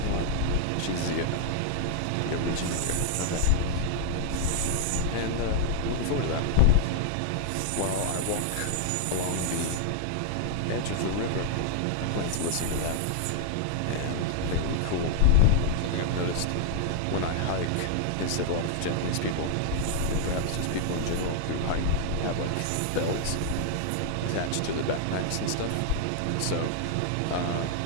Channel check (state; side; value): different; both; correlation -0.01